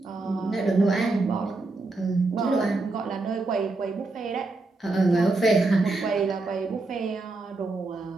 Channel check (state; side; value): quieter; left; 3.3 dB